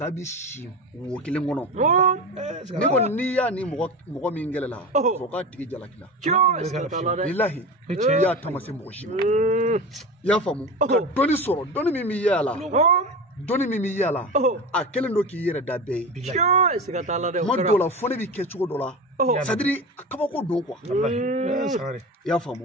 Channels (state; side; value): normal; both; correlation 0.27